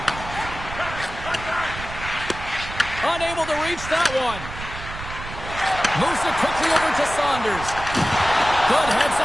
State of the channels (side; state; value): right; noise; rumble, 11 dB below the sound